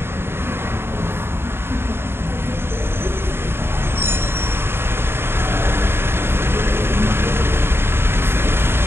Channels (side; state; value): left; late; 0.11 ms